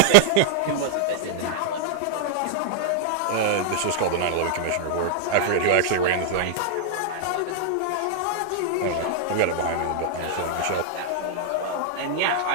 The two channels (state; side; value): different; both; correlation -0.01